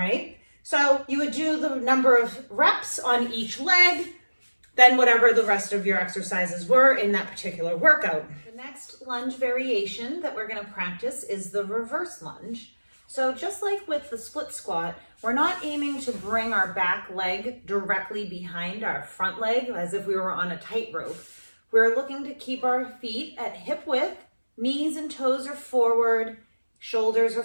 So you would do the number of reps on each leg, then whatever the rest of your exercises were in that particular workout. The next lunge variation that we're going to practice is the reverse lunge. So just like with the split squat, we're not aiming to bring our back leg directly behind our front leg as if we were on a tightrope. We're looking to keep our feet at hip width, knees and toes are forward, shoulders are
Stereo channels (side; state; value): both; inverted; correlation -1.00